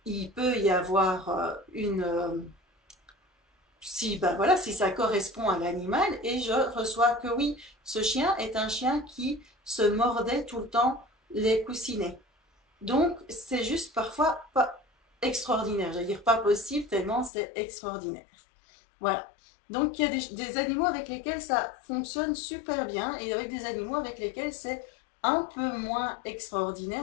il peut y avoir si, ben voilà, si ça correspond à l'animal, et je reçois que oui, ce chien est un chien qui se mordait tout le temps les coussinets. Donc c'est juste parfois pas extraordinaire, j'allais dire pas possible tellement c'est extraordinaire. Voilà. Donc il y a des animaux avec lesquels ça fonctionne super bien et avec des animaux avec lesquels c'est un peu moins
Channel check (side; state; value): right; drops out; at 17.3 s